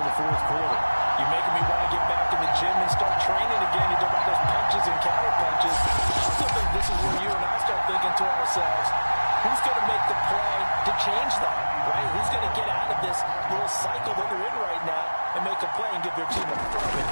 in the 4th quarter. You're making me want to get back in the gym and start training again. You talk about those punches and counter-punches. I still think this is where you and I start thinking to ourselves, who's going to make the play to change that, right? Who's going to get out of this little cycle that they're in right now and make a play and give their team a firm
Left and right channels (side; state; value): both; inverted; correlation -1.00